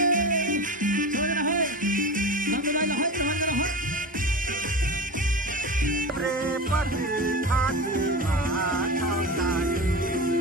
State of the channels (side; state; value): both; normal; correlation 0.27